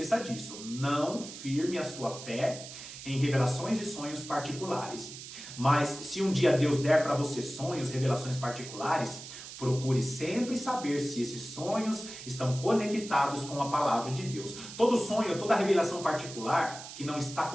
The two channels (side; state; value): right; noise; hiss, 12 dB below the sound